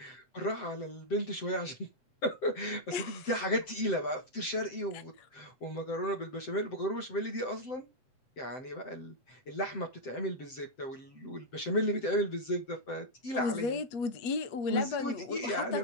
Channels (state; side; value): late; right; 7.7 ms